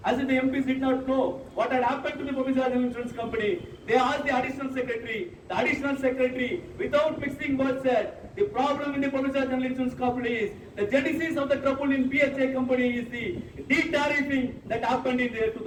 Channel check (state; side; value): identical; both; correlation 1.00